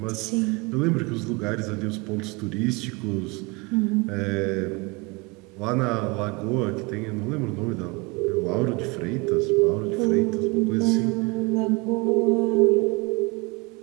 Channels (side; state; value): left; quieter; 27.1 dB